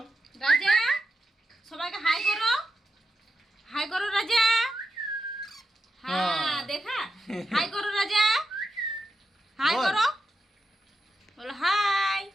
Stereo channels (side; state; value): both; normal; correlation 0.88